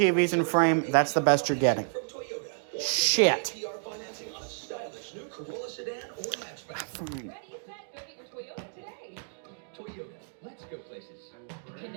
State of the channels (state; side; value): silent; left; digital silence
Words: in frame. That's the best you're getting. Shit. Let's go places.